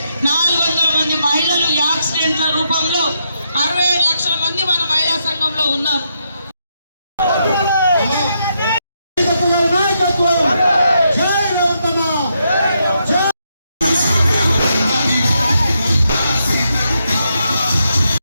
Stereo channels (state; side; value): inverted; both; correlation -0.80